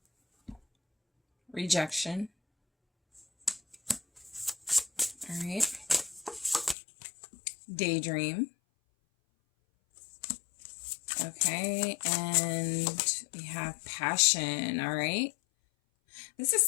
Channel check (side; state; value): right; drops out; at 6.8 s